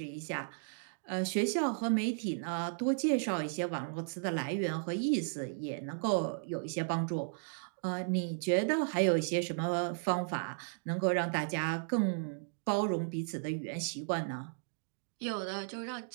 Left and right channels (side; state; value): left; silent; digital silence